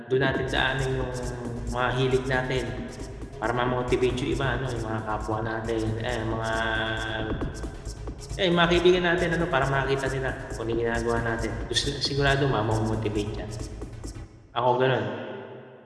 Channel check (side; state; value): both; identical; correlation 1.00